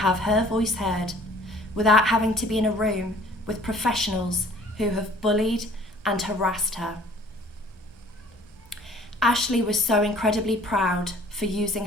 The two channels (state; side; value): normal; both; correlation 0.52